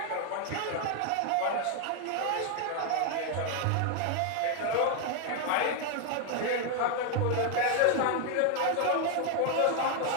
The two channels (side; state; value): both; different; correlation 0.00